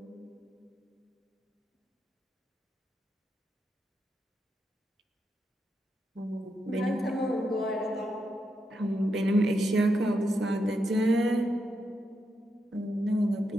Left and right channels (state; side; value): normal; both; correlation 0.83